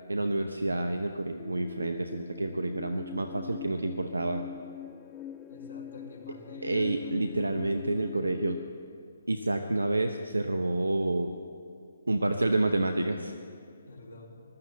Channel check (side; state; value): both; inverted; correlation -0.90